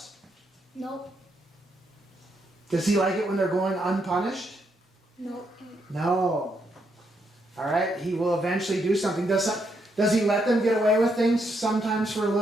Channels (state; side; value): normal; both; correlation 0.77